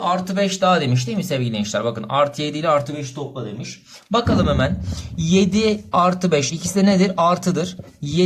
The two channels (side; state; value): both; identical; correlation 1.00